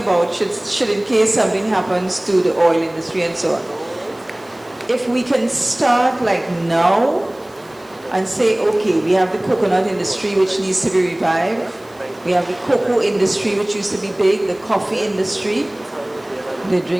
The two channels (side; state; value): right; noise; hiss, 29 dB below the sound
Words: should in case something happens to the oil industry and so on. If we can start like now and say, okay, we have the coconut industry which needs to be revived. We have the cocoa industry which used to be big, the coffee industry. They